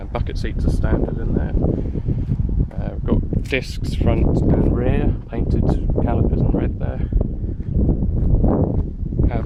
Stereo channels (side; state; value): both; identical; correlation 1.00